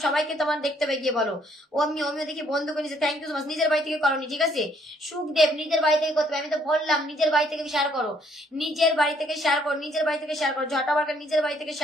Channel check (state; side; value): normal; both; correlation 0.66